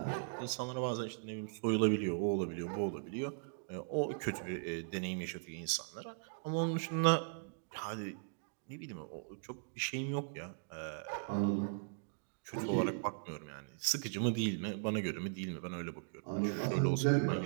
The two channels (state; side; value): silent; left; digital silence